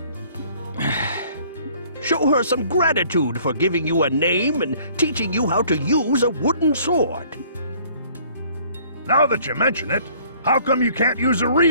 Show her some gratitude for giving you a name and teaching you how to use a wooden sword. Now that you mention it, how come you can't use a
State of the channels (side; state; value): both; inverted; correlation -0.56